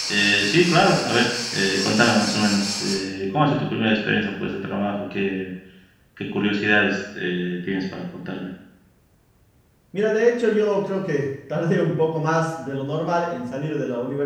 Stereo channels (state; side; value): identical; both; correlation 1.00